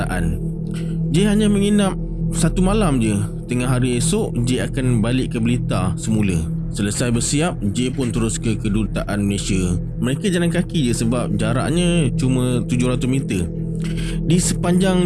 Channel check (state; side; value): identical; both; correlation 1.00